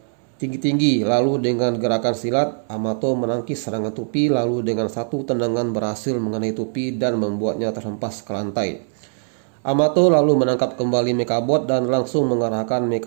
tinggi-tinggi, lalu dengan gerakan silat Amato menangkis serangan Tupi, lalu dengan satu tendangan berhasil mengenai Tupi dan membuatnya terhempas ke lantai. Amato lalu menangkap kembali Mekabot dan langsung mengarahkan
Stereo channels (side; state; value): left; silent; 65 dB below the other